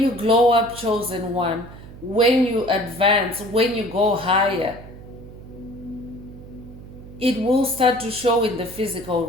you glow up, chosen one, when you advance, when you go higher, it will start to show in the physical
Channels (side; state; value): right; noise; hum, 16 dB below the sound